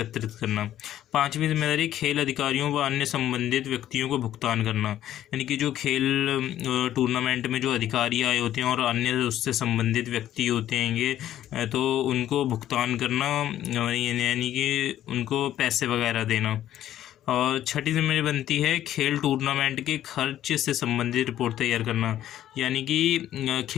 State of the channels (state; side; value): quieter; right; 12.1 dB